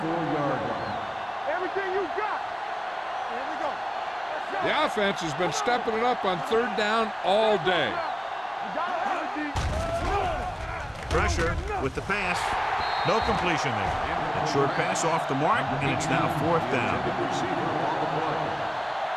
line. Everything you got. Here we go. The offense has been stepping it up on 3rd down all day. You got it, Pressure with the pass. No completion there. A short pass off the mark, and it's now 4th down. Receiver on the play.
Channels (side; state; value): both; identical; correlation 1.00